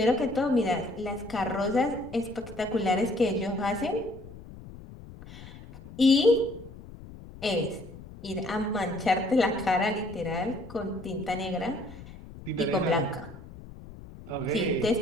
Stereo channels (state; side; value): noise; left; rumble, 16 dB below the sound